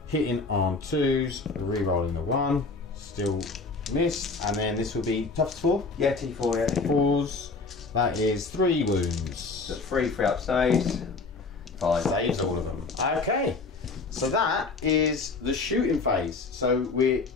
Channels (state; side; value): quieter; right; 4.0 dB